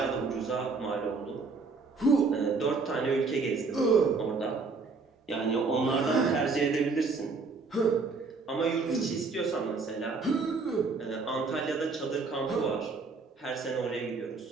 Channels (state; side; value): quieter; left; 4.3 dB